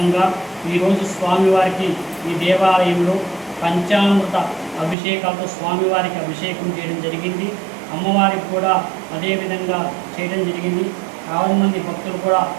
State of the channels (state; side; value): drops out; left; at 5.0 s